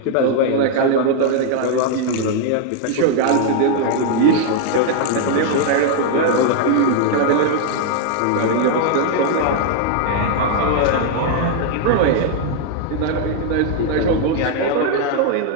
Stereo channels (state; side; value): different; both; correlation 0.00